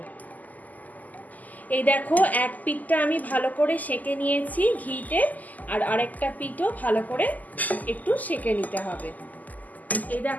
এই দেখো, এক পিঠটা আমি ভালো করে সেঁকে নিয়েছি ঘিতে, আর আরেকটা পিঠও ভালো করে একটু সেঁকে নিতে হবে। এই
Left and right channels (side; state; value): right; late; 0.080 ms